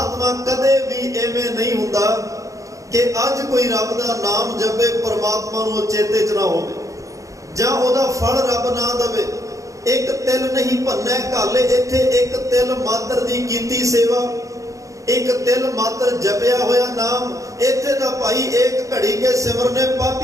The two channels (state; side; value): late; left; 0.16 ms